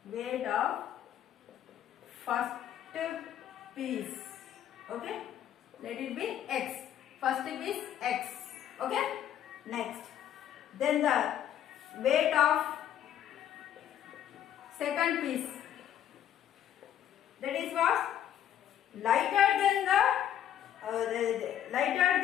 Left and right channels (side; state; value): right; quieter; 10.5 dB